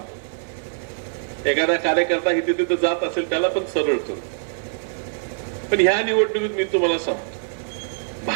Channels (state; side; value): silent; left; 55 dB below the other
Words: एखादा कार्यकर्ता इथे तिथे जात असेल त्याला पण सरळ करू. पण ह्या निवडणुकीत मी तुम्हाला सांगतो,